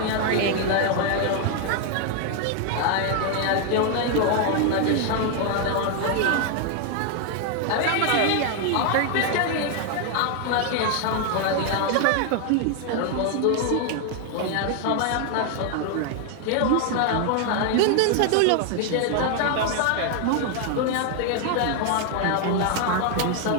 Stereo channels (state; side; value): different; both; correlation 0.00